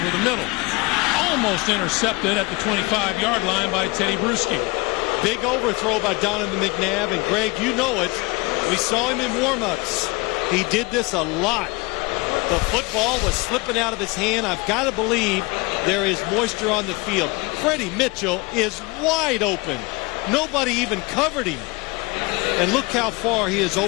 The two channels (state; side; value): quieter; right; 25.6 dB